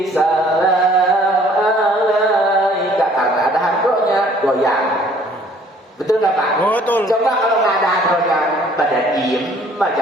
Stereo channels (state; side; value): normal; both; correlation 0.57